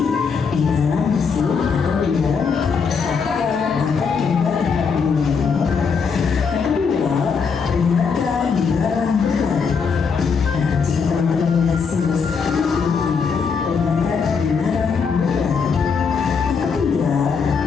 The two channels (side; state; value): right; quieter; 5.6 dB